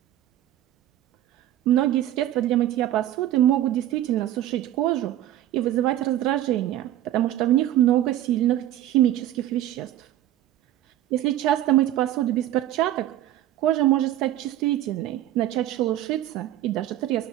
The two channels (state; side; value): quieter; left; 13.0 dB